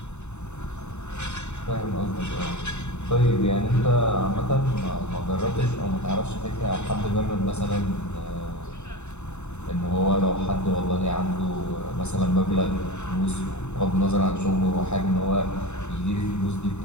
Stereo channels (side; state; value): right; late; 0.82 ms